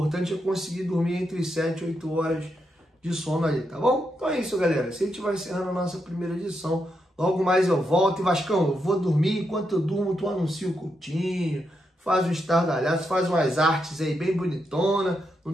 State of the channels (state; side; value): normal; both; correlation 0.83